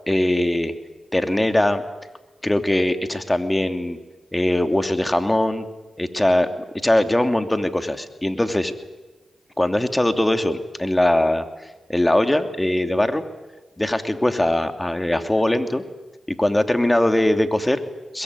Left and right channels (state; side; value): normal; both; correlation 0.98